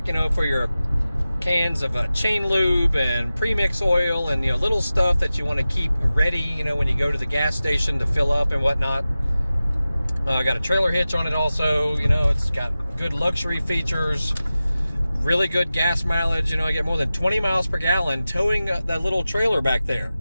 for your cans of chain lube and premix oil and, little stuff that you want to keep ready, when you go to the gas station to fill up and whatnot. I got a trailer hitch on it also. It's got good luxury features, really good gas mileage. I get more than 20 miles per gallon towing that little trailer back there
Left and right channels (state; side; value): inverted; both; correlation -0.95